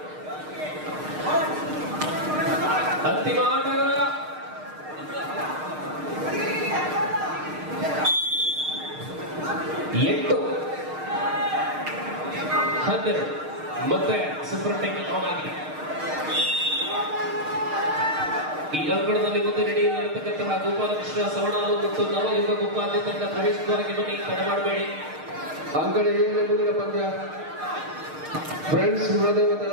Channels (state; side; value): late; left; 6.5 ms